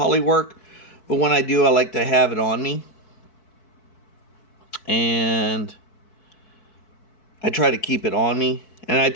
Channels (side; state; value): right; late; 4.6 ms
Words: work, but when I do, I like to have it on me. And I try to keep it on me. And I